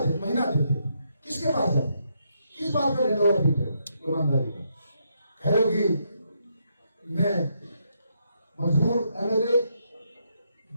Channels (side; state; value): both; inverted; correlation -0.78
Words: दे, महीना देते। किसके पास जाते? किस बात का ढिंढोरा पीटे हो? ईमानदारी का कह रहे हो कि मैं मजबूर एमएलए,